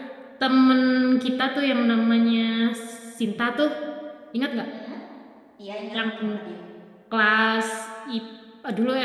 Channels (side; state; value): both; identical; correlation 1.00